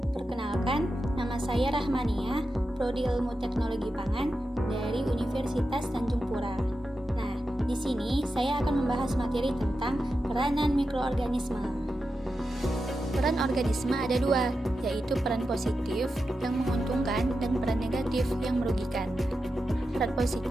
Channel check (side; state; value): both; normal; correlation 0.89